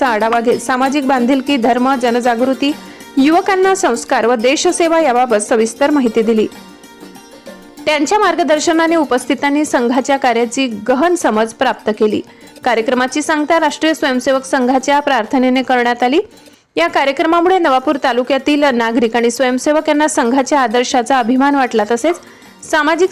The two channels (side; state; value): both; identical; correlation 1.00